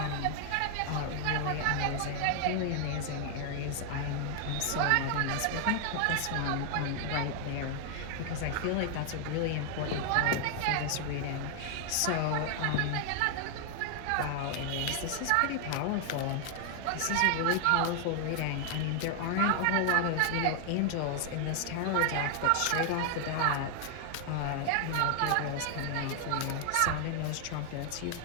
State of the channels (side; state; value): both; different; correlation 0.00